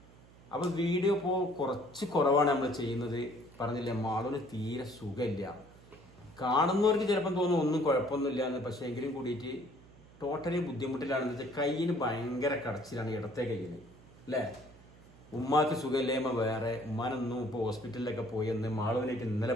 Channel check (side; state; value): right; noise; hum, 23 dB below the sound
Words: അപ്പൊ വീഡിയോ ഇപ്പോ കുറച്ച് കുറവാണ് നമ്മൾ ചെയ്യുന്നത്. പറഞ്ഞില്ലേ, മാളൂന് തീരെ സുഖമില്ല. കാണുന്നവർക്ക് ചിലപ്പം തോന്നും ഒന്നും കുഴപ്പമൊന്നുമില്ല എന്ന്. പക്ഷെ എങ്കിലും കൂടിയിട്ട് ടോട്ടലി ബുദ്ധിമുട്ടിലാണെന്ന് വെച്ചാൽ കയ്യിന് ഭയങ്കര കടച്ചിലാണ്, ഇടത്തെ കയ്യിന് അല്ലേ. ഉമ്മാക്ക് സുഖമില്ലായ്മ വേറെ, ഉമ്മാനൊന്നും ഇപ്പോൾ ഹോസ്പിറ്റലിലൊക്കെ പോയി വന്ന്, മാളൂനായിട്ട്